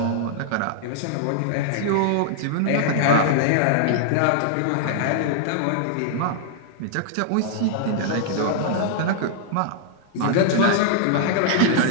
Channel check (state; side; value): different; both; correlation -0.01